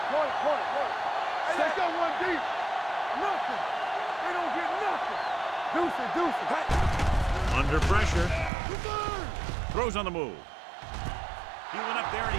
Point. Hey, let's go one deep. Nothing. They don't get nothing. Deuce it. Hey. Under pressure. Throws on the move. He went up there and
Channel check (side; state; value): left; drops out; at 8.5 s